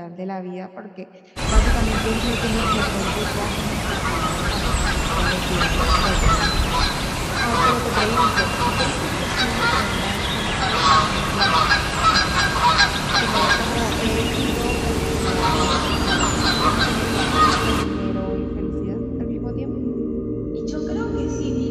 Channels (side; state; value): both; identical; correlation 1.00